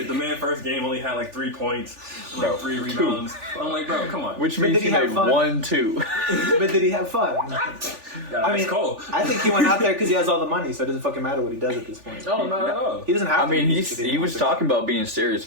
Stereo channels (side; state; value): left; late; 3.4 ms